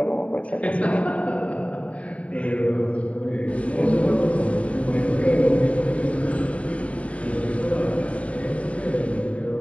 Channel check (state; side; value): late; right; 0.066 ms